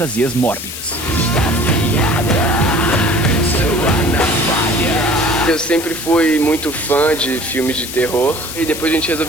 mórbidas. Eu sempre fui muito fã de filmes de terror e depois a gente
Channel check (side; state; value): left; noise; hiss, 9 dB below the sound